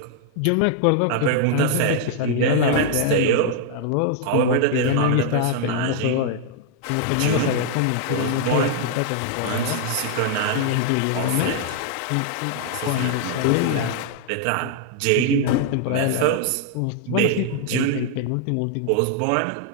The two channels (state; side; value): different; both; correlation 0.00